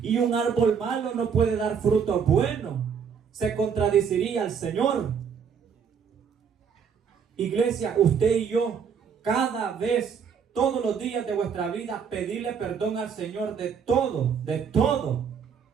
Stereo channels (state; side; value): quieter; left; 6.9 dB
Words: Y un árbol malo no puede dar frutos buenos. Se contradeciría al Señor. Iglesia, usted y yo, cada vez, todos los días de vuestra vida, pedirle perdón al Señor de todo, de todo.